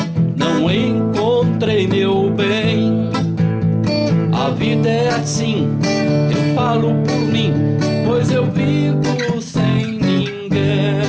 não encontrei meu bem. A vida é assim, eu falo por mim, pois eu vivo sem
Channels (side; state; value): both; identical; correlation 1.00